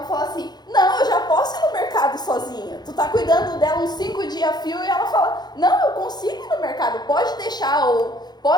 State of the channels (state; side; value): late; right; 0.20 ms